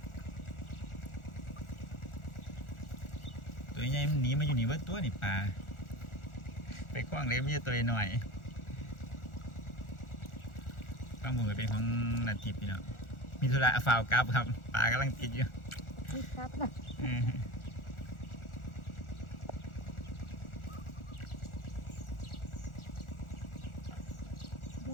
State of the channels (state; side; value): late; right; 1.4 ms